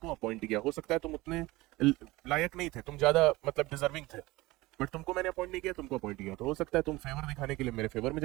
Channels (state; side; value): quieter; left; 20.2 dB